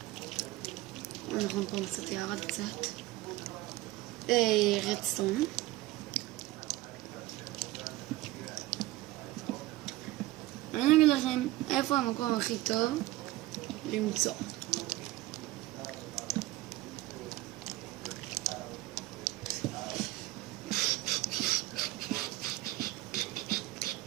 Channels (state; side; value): quieter; left; 17.6 dB